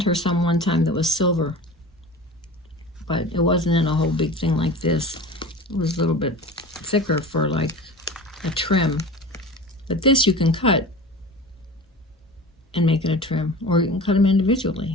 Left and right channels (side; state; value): both; normal; correlation 0.35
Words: her some one time that was silver. But it wasn't in a whole big thing like this. It was a little bit thicker for like a trim. But this you can cut and make it a trim. Or you can cut them